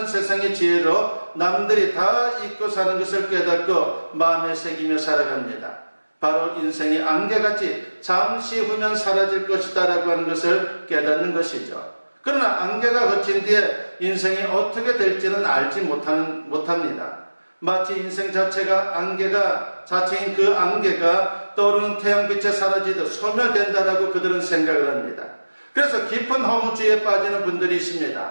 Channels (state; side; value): inverted; both; correlation -1.00